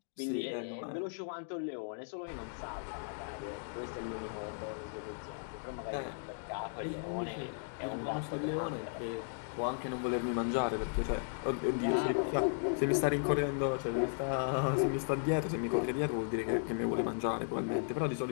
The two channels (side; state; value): right; silent; digital silence